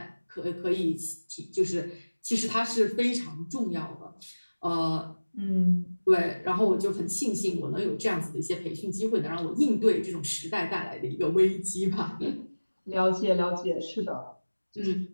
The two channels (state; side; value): inverted; both; correlation -1.00